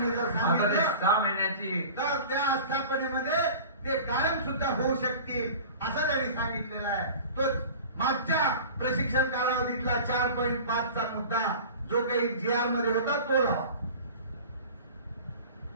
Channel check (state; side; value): inverted; both; correlation -0.39